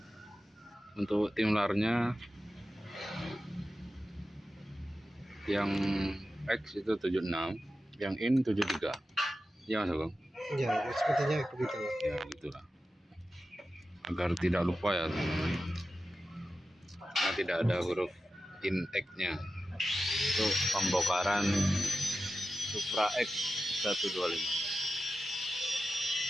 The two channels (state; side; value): normal; both; correlation 0.92